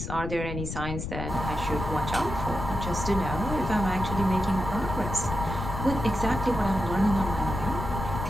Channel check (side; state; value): left; noise; rumble, 5 dB below the sound